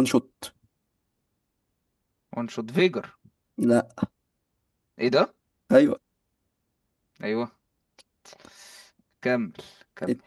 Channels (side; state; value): both; identical; correlation 1.00